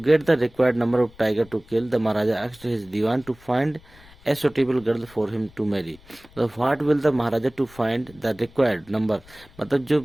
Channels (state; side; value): noise; left; rumble, 25 dB below the sound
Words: the required number of tiger to kill, the Maharaja asked his dewan to find a suitable girl for him to marry. What will the Maharaja to find the required number, मतलब